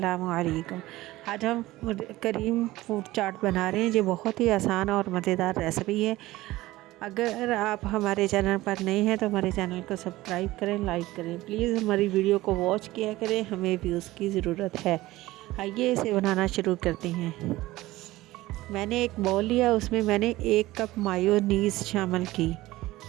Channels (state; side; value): quieter; left; 17.7 dB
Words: अलैकुम। आज हम करीम फूड चाट बना रहे हैं। ये बहुत ही आसान और मज़ेदार रेसिपी है। अगर आप हमारे चैनल पर नए हैं तो हमारे चैनल को सब्सक्राइब करें, लाइक करें। प्लीज़ हमारी वीडियो को वॉच किया करें, हमें व्यूज़ की ज़रूरत है। आइए इसे बनाना शुरू करते हैं। मैंने एक बाउल लिया, उसमें मैंने 1 कप मायोनीज़ शामिल की।